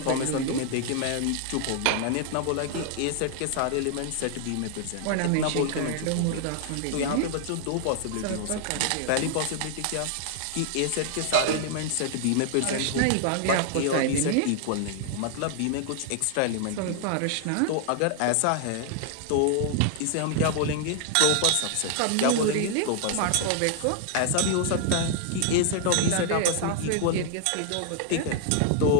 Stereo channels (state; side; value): different; both; correlation 0.00